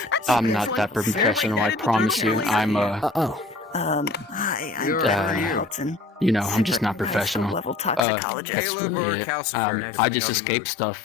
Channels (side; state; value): right; drops out; at 8.0 s